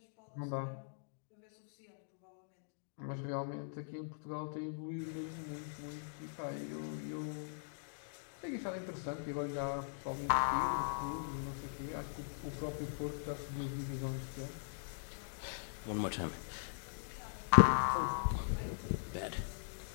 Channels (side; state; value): right; silent; digital silence